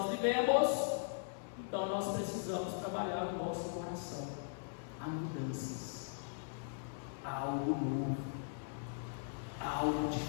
vivemos. Então nós precisamos trabalhar no nosso coração. Há mudanças, há algo novo, há algo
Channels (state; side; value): silent; right; digital silence